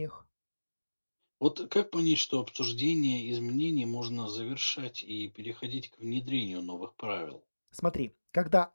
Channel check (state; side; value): inverted; both; correlation -1.00